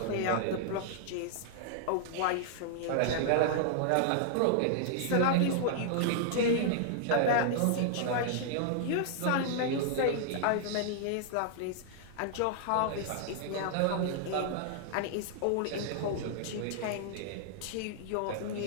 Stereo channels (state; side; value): different; both; correlation -0.01